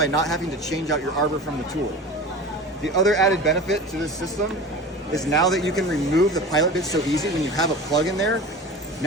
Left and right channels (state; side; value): normal; both; correlation 0.34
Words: not having to change out your arbor from the tool. The other added benefit to this system is now that you can remove the pilot bit so easy when you have a plug in there,